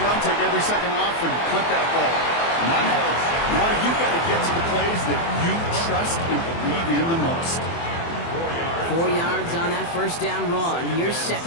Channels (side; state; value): right; late; 24 ms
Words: take every second off and punt that ball. Now you've got to get to the plays that you trust and believe in the most. 4 yards on that 1st down run. Here's